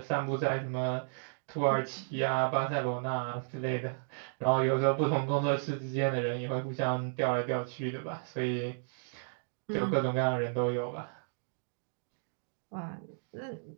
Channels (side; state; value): left; silent; digital silence